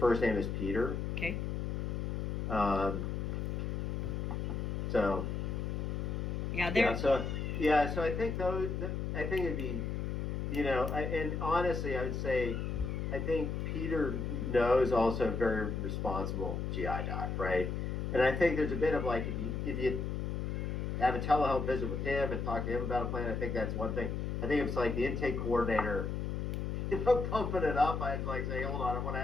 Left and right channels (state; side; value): noise; left; hum, 2 dB below the sound